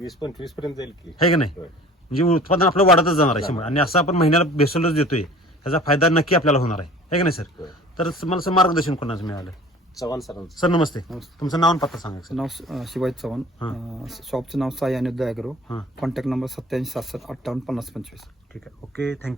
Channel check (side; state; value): both; normal; correlation 0.46